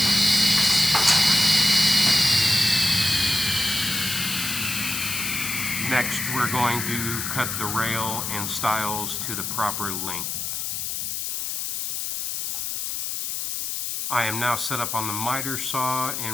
Next, we're going to cut the rail and stiles to the proper length. I am now set up on the miter saw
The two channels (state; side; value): noise; left; hiss, 3 dB below the sound